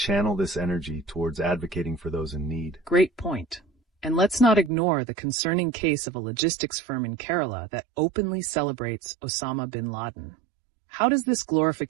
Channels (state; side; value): drops out; left; at 4.7 s